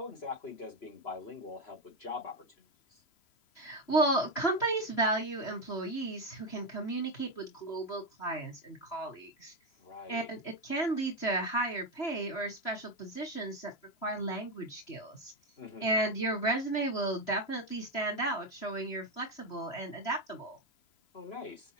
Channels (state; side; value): late; right; 3.0 ms